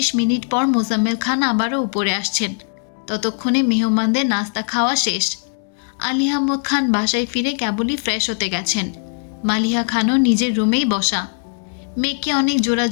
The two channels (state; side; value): silent; right; 66 dB below the other